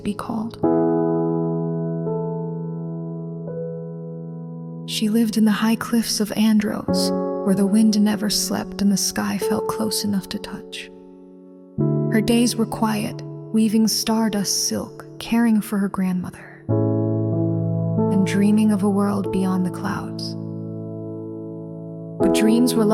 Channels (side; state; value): both; identical; correlation 1.00